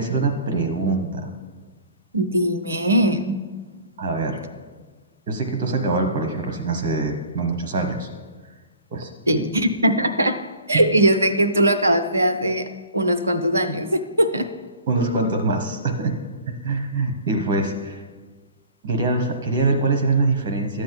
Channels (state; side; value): inverted; both; correlation -0.49